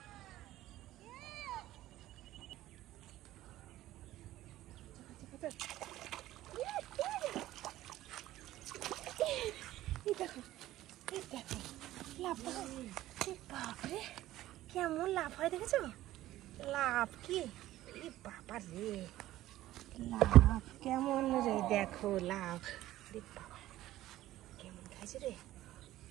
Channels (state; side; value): quieter; left; 14.9 dB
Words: বাপরে কেমন লাভ হয় দেখেছো? লাভ কি বাবা রে, লাভ কেমন রে, দেখো লাভ। রে বাবা কেমন খাইছে রে,